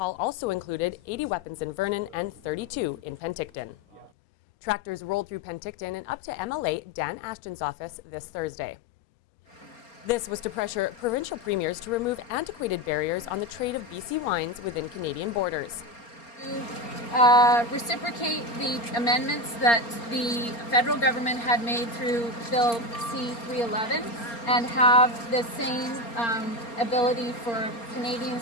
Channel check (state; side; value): late; right; 4.3 ms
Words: also included 80 weapons in Vernon and 32 in Penticton. Tractors rolled through Penticton and up to MLA Dan Ashton's office this Thursday. This was to pressure provincial premiers to remove antiquated barriers on the trade of BC wines within Canadian borders. To reciprocate the amendments that the federal government had made through Bill C-311 and have the same ability for